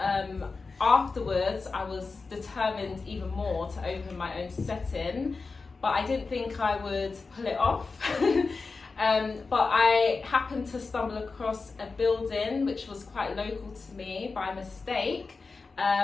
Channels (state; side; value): quieter; right; 4.2 dB